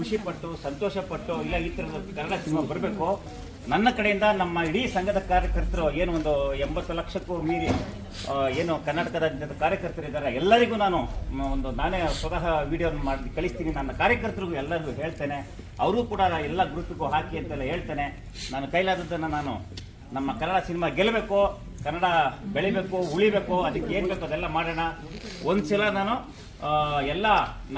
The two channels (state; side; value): identical; both; correlation 1.00